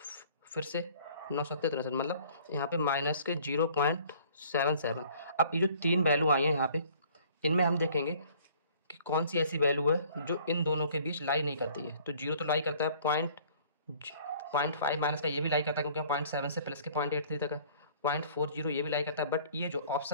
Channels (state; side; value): inverted; both; correlation -0.54